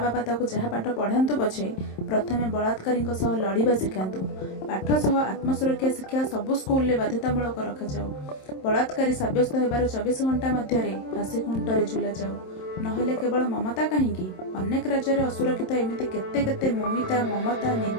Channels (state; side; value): late; right; 27 ms